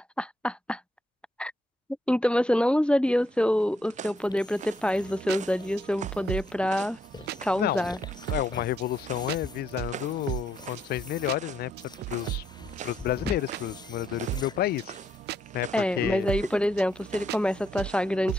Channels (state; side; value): normal; both; correlation 0.74